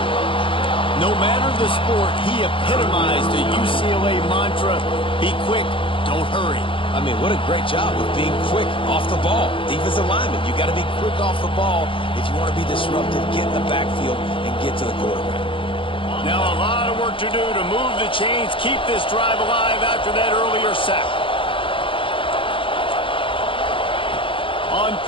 No matter the sport, he epitomized the UCLA mantra, be quick, Don't hurry. I mean, what a great job of being quick off the ball. Defensive lineman, you got to be quick off the ball if you want to be disruptive, get in the backfield, and get to the quarterback. Now a lot of work to do to move the chains, keep this drive alive after that earlier sack. On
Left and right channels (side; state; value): right; late; 0.25 ms